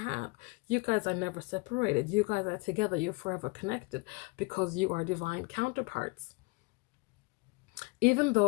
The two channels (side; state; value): right; quieter; 27.6 dB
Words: You guys are never separated. You guys are together. You're forever connected because you are divine counterparts. Even